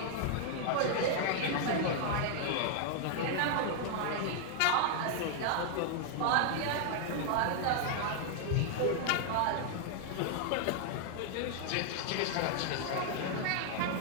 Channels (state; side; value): different; both; correlation 0.00